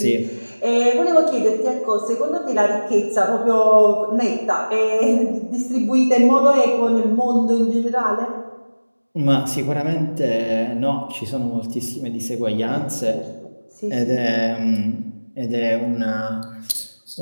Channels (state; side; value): inverted; both; correlation -1.00